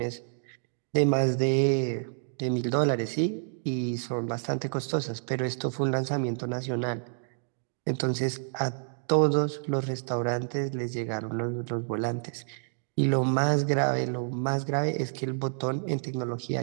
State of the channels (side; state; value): left; silent; digital silence